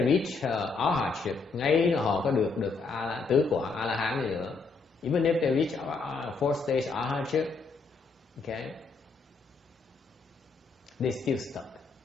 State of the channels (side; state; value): right; quieter; 4.4 dB